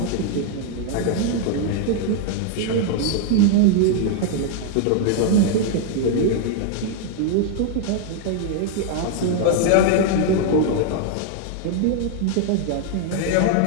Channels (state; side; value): different; both; correlation 0.00